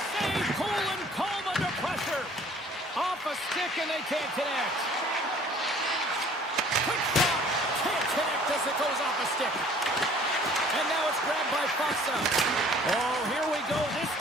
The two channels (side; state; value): both; normal; correlation 0.54